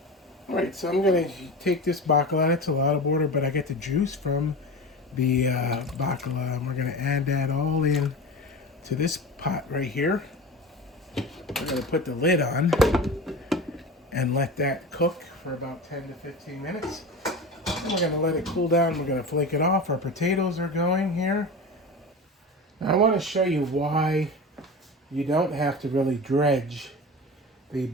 All right, so I'm going to take this Baccalà. It's a lot of water, but I get the juice from the Baccalà, and we're going to add that all in to this pot right here. We're going to put the lid on and let that cook for about 10 to 15 minutes. And we're going to let it cool down. We're going to flake it off. Our potatoes are going here. Now I want to show you why you don't have to really dredge the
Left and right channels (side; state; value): both; normal; correlation 0.30